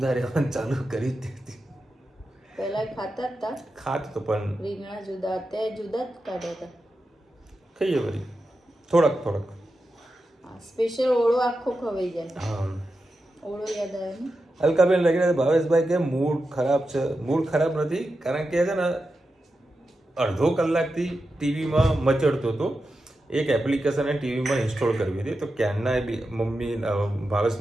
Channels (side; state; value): both; normal; correlation 0.90